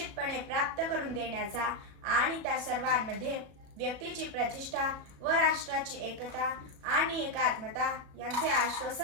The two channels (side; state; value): left; late; 37 ms